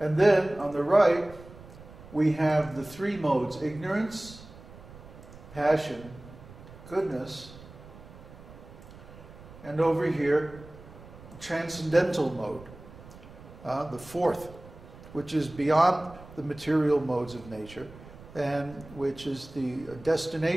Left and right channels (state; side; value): noise; right; rumble, 18 dB below the sound